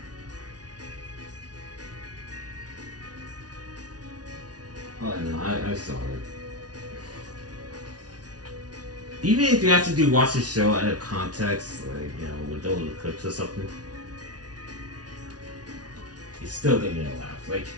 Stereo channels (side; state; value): left; late; 0.69 ms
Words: no. saw it. Even if you actually do watch the show out of context, like, you know, with those clips or something, it's still gonna get a laugh. Like,